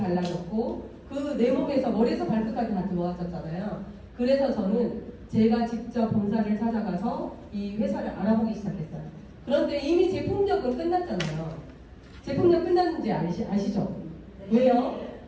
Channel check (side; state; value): both; identical; correlation 1.00